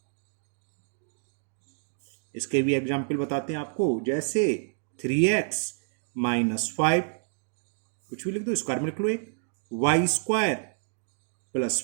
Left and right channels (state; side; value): silent; left; digital silence